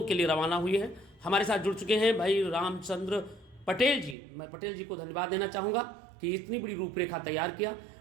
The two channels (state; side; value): drops out; left; at 4.2 s